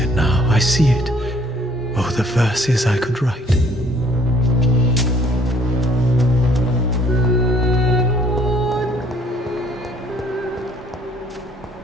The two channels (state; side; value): normal; both; correlation 0.59